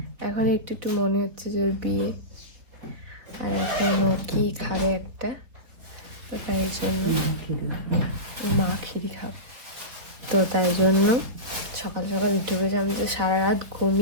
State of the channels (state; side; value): late; left; 3.8 ms